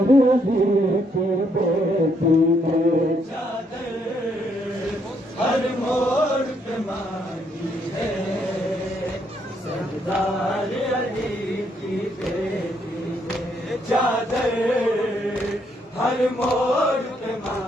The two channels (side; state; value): both; normal; correlation 0.73